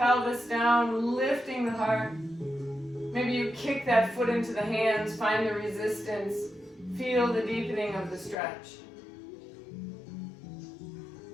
down, lifting the heart. Maybe you kick that foot into the hands, find the resistance, feel the deepening of the stretch.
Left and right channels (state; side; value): drops out; right; at 8.3 s